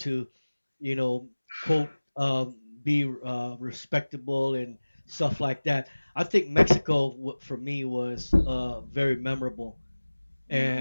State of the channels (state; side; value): inverted; both; correlation -1.00